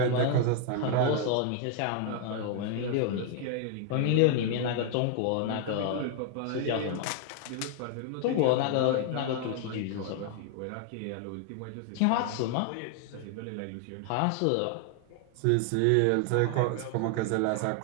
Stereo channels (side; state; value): both; different; correlation 0.00